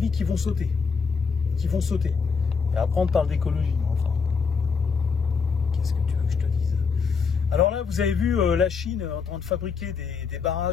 qui vont sauter. Et après, on parle d'écologie. Enfin, qu'est-ce que tu veux que je te dise? Alors là, vous avez vu la Chine en train de fabriquer des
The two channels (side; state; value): right; quieter; 5.5 dB